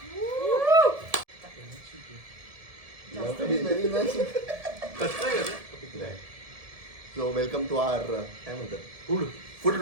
सो वेलकम टू आवर काय म्हणतात फूड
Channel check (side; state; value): left; late; 1.7 ms